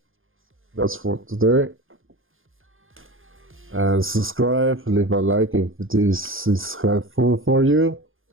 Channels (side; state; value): left; late; 0.59 ms